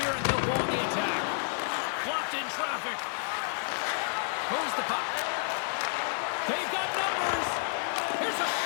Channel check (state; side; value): silent; right; digital silence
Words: and they'll go on the attack. Blocked in traffic. Moves the puck. They've got numbers. Here's a